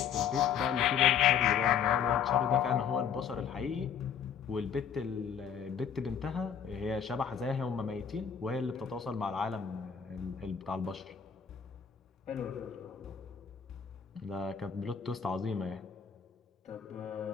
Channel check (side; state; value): right; quieter; 7.7 dB